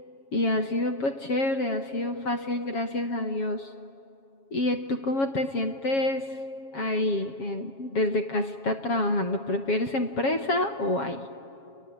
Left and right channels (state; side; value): late; right; 7.3 ms